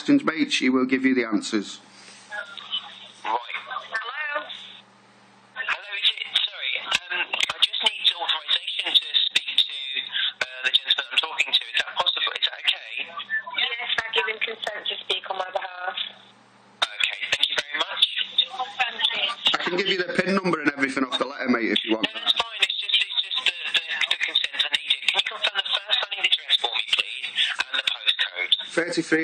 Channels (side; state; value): both; identical; correlation 1.00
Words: mate, she will give you the answers. Right. Hello? Hello, is it? Sorry, I just need authorization to speak to the gentleman I'm talking to. Is that possible? Is that okay? Yes, I give him consent to speak on my behalf. Okay, thank you very much. Thank you. I can give you the PIN number and everything off the letter, mate, if you want. No, that's fine. It's just the consent I needed. Can you confirm the first line of the address for me, please, and the postcode?